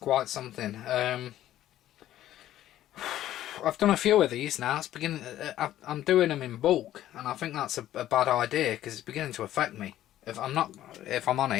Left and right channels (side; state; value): right; quieter; 13.0 dB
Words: something. I've done a few of these now. It's beginning. I'm doing them in bulk, and I think that's a bad idea because it's beginning to affect me. If I'm